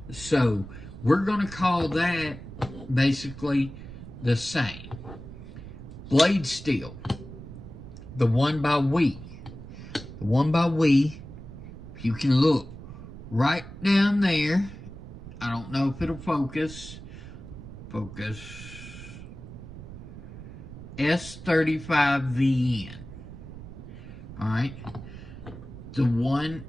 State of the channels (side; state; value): right; noise; rumble, 13 dB below the sound